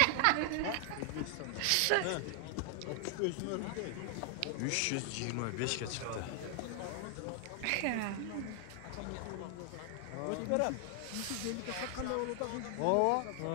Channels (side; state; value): both; different; correlation 0.00